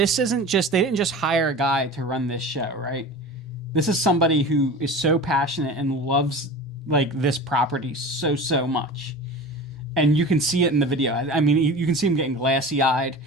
isn't just, they didn't just hire a guy to run this show, right? This is somebody who is so passionate and loves like this property so much. And you can see it in the video. I mean, you can see him getting glassy-eyed.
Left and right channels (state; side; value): normal; both; correlation 0.34